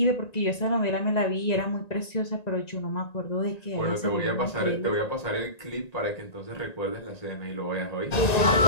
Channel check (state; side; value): late; right; 1.9 ms